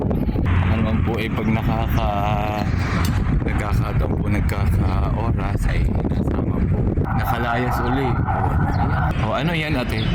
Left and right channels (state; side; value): identical; both; correlation 1.00